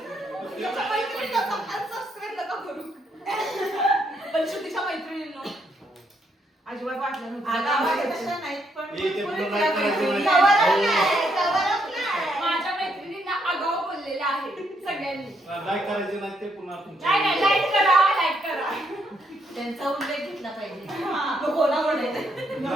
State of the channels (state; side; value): normal; both; correlation 0.75